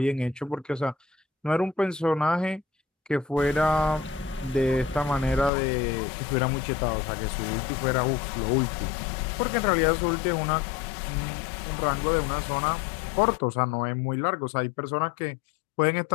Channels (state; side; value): drops out; right; at 5.5 s